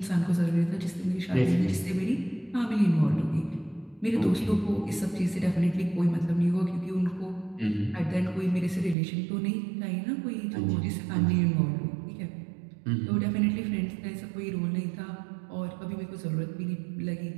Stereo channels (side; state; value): left; drops out; at 9.0 s